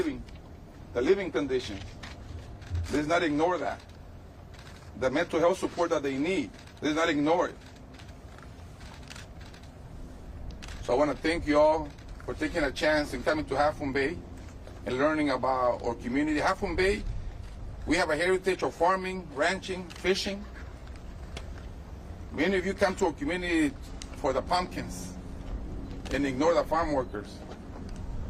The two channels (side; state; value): both; identical; correlation 1.00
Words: the living conditions. Let's not ignore that. The mental health support that they need, let's not ignore it. So I want to thank you all for taking a chance and coming to Half Moon Bay and learning about our community. Half Moon Bay, we have a heritage of farming, ranching, fishing. Many of you come to our community for the pumpkins and ignore the farm workers.